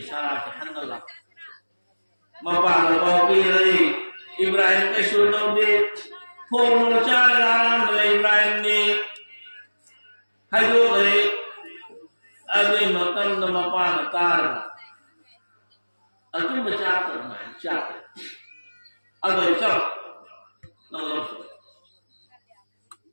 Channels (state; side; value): inverted; both; correlation -1.00